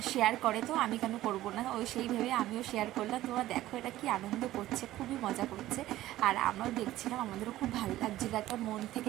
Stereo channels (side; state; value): left; quieter; 15.1 dB